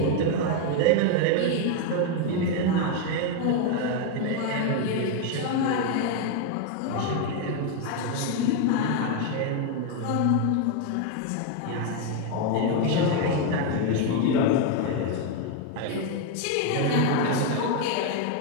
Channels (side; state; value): both; different; correlation 0.01